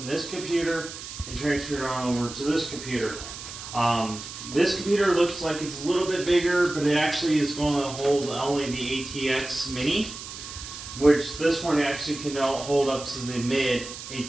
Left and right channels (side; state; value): right; noise; hiss, 11 dB below the sound